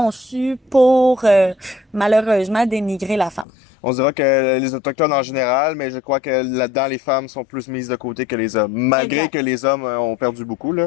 pour malheureusement dénigrer la femme. On dira que les Autochtones en général, mais je crois que là-dedans, les femmes sont plus mises de côté que les hommes, malgré que les hommes ont perdu beaucoup, là.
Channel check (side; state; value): right; drops out; at 3.5 s